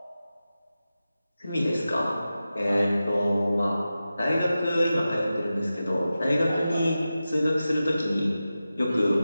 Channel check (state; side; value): inverted; both; correlation -0.93